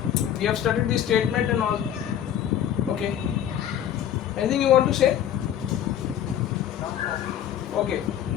We have studied the statement and all. Okay. Anything you want to say? Okay.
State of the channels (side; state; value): right; quieter; 10.3 dB